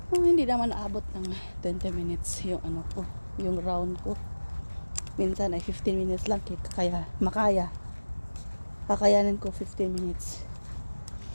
hindi naman naabot ng 20 minutes yung yung round ko. Minsan ay 15 minutes lang kaya kakayanin ko 15 minutes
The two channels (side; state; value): both; inverted; correlation -1.00